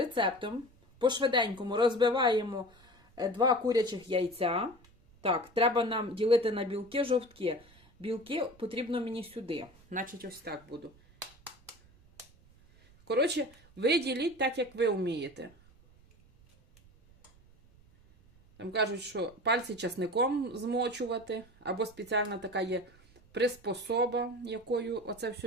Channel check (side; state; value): right; noise; rumble, 27 dB below the sound